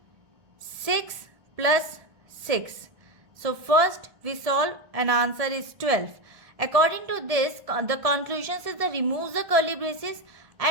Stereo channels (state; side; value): late; left; 1.7 ms